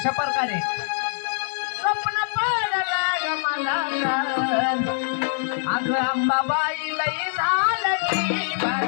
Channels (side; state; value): right; silent; digital silence